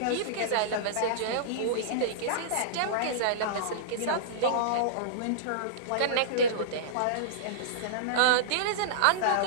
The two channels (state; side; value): different; both; correlation -0.03